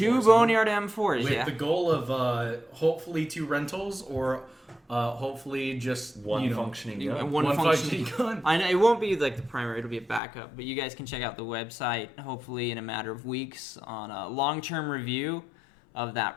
Boneyard M4s. With Yeah. the goal of hopefully 2 rentals or hopefully just One functioning gun. One functioning gun. I know it won't be like the primary; it'll be a backup. But you guys can check out the website, hopefully in a matter of weeks, on a long-term review of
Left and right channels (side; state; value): right; drops out; at 10.2 s